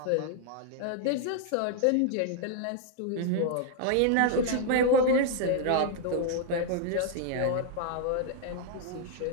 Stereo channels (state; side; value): different; both; correlation 0.00